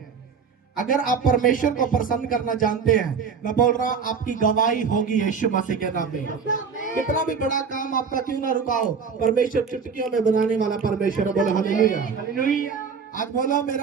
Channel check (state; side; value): quieter; left; 5.9 dB